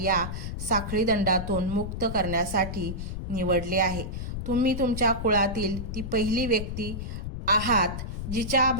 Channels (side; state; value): left; noise; rumble, 6 dB below the sound